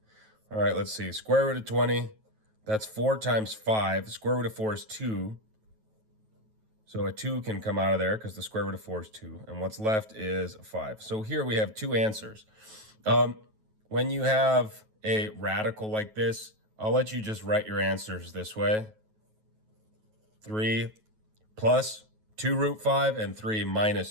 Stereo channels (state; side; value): late; left; 9.3 ms